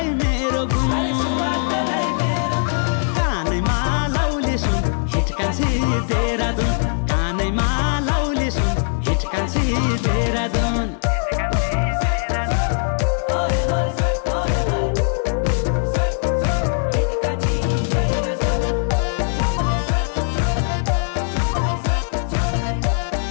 मेरो गुण कानैमा लाउले सुन हिचकान्छे देहरादून कानैमा लाउले सुन हिचकान्छे देहरादून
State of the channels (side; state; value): right; silent; 60 dB below the other